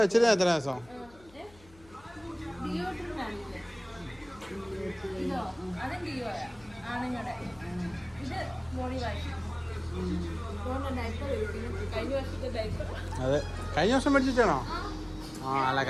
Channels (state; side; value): noise; left; hum, 24 dB below the sound